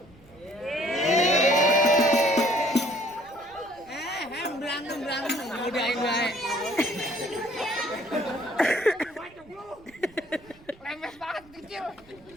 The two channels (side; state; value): right; noise; rumble, 26 dB below the sound